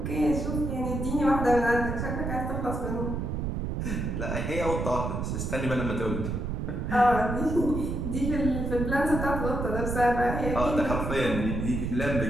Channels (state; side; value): noise; right; rumble, 2 dB below the sound